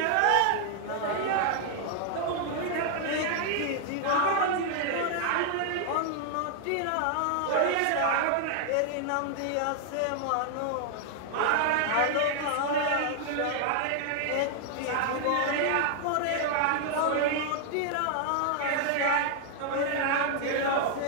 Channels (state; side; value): different; both; correlation 0.00